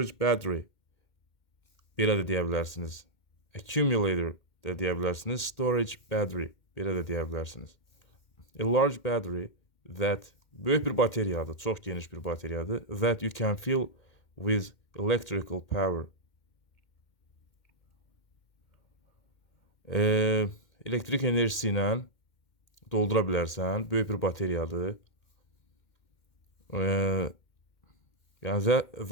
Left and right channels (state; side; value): late; right; 2.2 ms